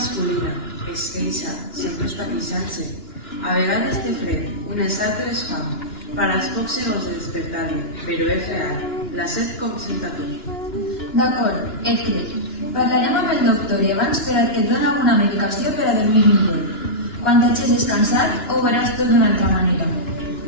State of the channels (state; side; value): late; right; 2.9 ms